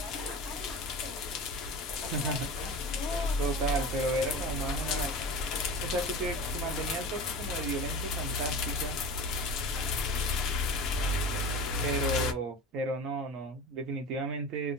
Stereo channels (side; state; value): both; normal; correlation 0.32